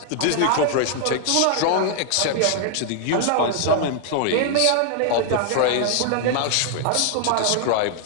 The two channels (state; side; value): different; both; correlation 0.00